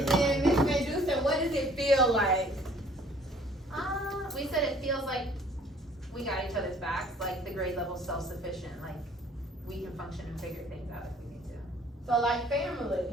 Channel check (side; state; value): both; normal; correlation 0.56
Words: then Miss Medusa, what does it feel like? We said it feels like we got each other's backs, like the grade level self-sufficient, like we can function and figure things out if we need to. So like